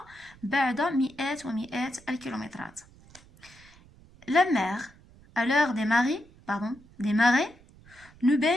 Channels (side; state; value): right; noise; rumble, 25 dB below the sound